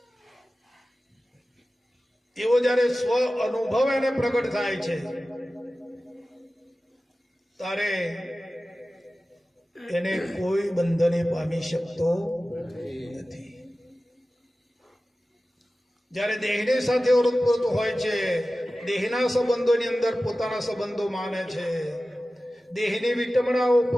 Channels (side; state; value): both; normal; correlation 0.95